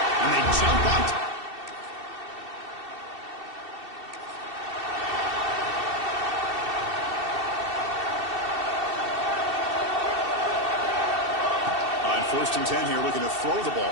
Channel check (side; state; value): left; late; 2.7 ms